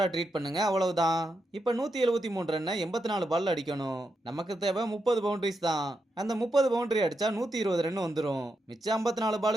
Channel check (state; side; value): normal; both; correlation 0.85